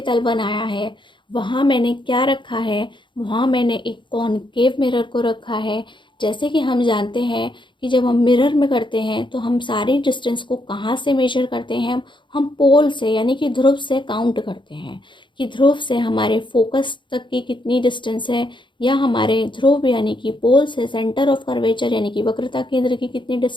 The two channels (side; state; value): right; late; 0.23 ms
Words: तल बनाया है। वहाँ मैंने क्या रखा है, वहाँ मैंने एक कॉनकेव मिरर को रखा है। जैसे कि हम जानते हैं कि जब हम मिरर में करते हैं तो हम सारी डिस्टेंस को कहाँ से मेजर करते हैं, हम पोल से यानी कि ध्रुव से काउंट करते हैं कि ध्रुव से हमारे फोकस तक की कितनी डिस्टेंस है, या हमारे ध्रुव यानी कि पोल से सेंटर ऑफ कर्वेचर यानी कि वक्रता केंद्र की कितनी